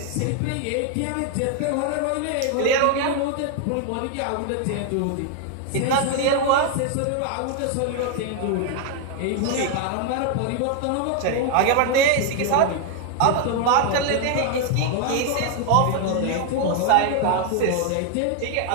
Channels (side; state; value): both; different; correlation 0.00